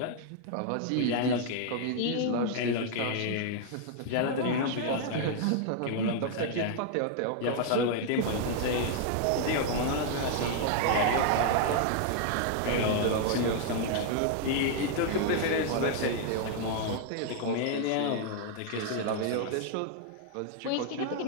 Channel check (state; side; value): different; both; correlation 0.00